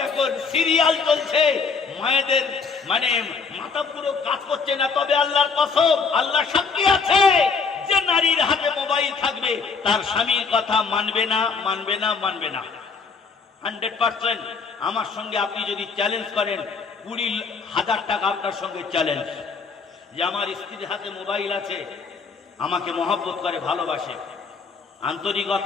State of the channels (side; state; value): right; quieter; 5.0 dB